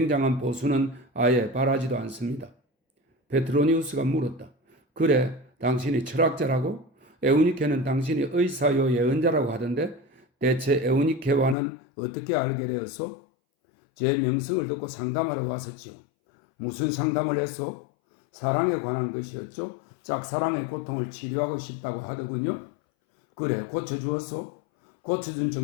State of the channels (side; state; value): right; drops out; at 11.6 s